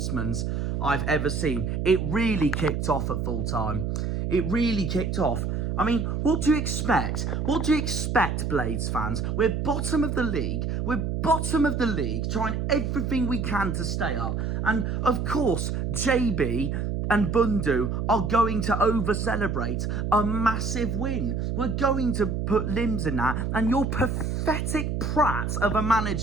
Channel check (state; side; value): noise; right; hum, 1 dB below the sound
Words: I've ever seen. It really kicked off at full time. It really kicked off. I mean, what do you expect? What do you expect, Blades fans? We're bottom of the league. We're bottom of the league, trying everything we can to stay up. And, of course, JB and Bundu are going to over-celebrate a massive win. We're going to put limbs in that. And your pathetic prat of a